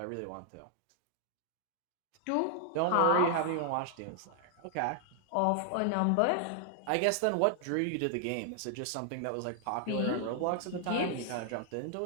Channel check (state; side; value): different; both; correlation 0.00